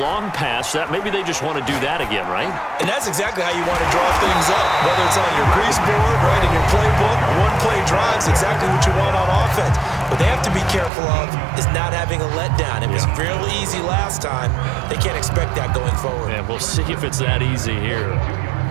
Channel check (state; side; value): drops out; left; at 10.9 s